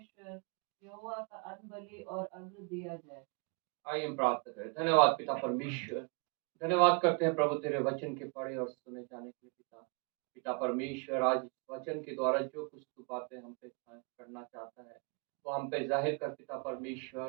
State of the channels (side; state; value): left; quieter; 36.1 dB